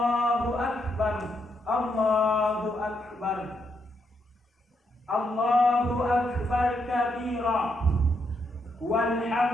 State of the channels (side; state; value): both; normal; correlation 0.78